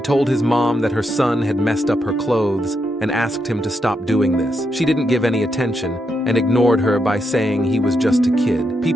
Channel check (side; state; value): both; normal; correlation 0.82